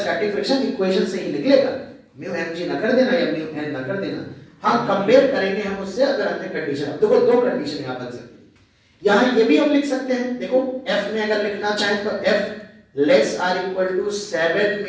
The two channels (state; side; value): identical; both; correlation 1.00